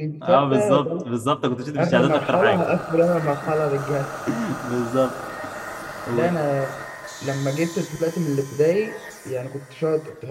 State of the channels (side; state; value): both; identical; correlation 1.00